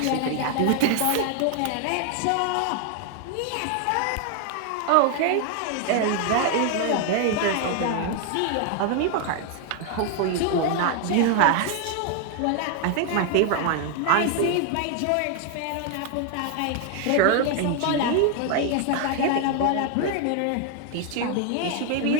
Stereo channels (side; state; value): both; different; correlation 0.00